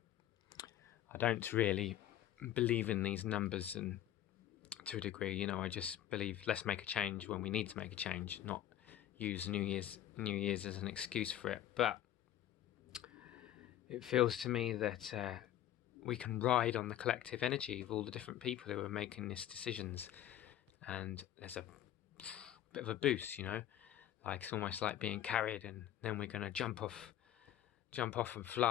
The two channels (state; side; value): quieter; right; 11.9 dB